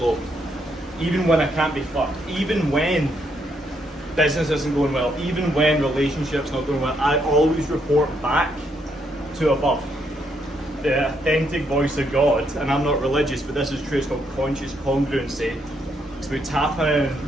Even when I can't be fucked. Even when business isn't going well. Even when relationships not going well. I always report back to above. The authentic voice of God, and I'm not religious, but this is true, it's called conscious congruency. It's about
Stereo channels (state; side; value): normal; both; correlation 0.75